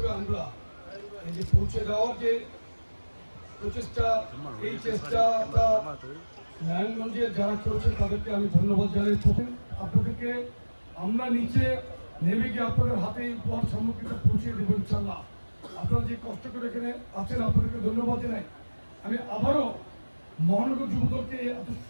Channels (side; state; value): both; inverted; correlation -1.00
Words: আমরা এই যে পৌঁছে দেওয়ার যে প্রচেষ্টা, এই চেষ্টাটা নারায়ণগঞ্জে যারা করেছে তাদেরকে আমি ধন্যবাদ জানাই। আপনাদেরকে আমরা নিচে নেমে গিয়ে আপনাদের হাতে এই উপহার সামগ্রীটা পৌঁছে দেবো ইনশাল্লাহ। আপনারা যে কষ্ট করে এখানে আছেন আপনাদেরকে ধন্যবাদ জানাই। আমি আবারও মহানগর যুবদলকে এত